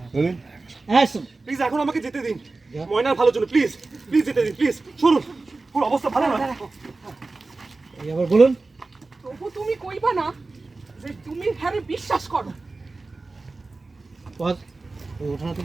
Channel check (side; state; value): left; quieter; 3.5 dB